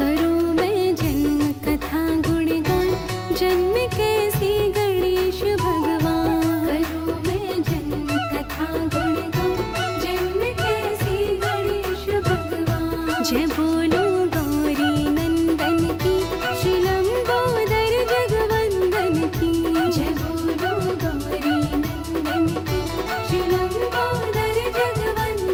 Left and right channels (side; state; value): both; identical; correlation 1.00